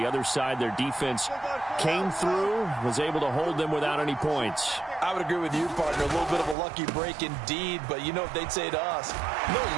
other side. Their defense came through, was able to hold them without any points. I would agree with you, partner. A little bit of a lucky break indeed, but you know what they'd say to us? No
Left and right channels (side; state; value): left; drops out; at 6.6 s